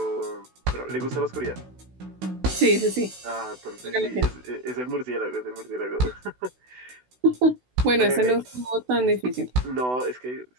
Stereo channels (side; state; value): left; late; 16 ms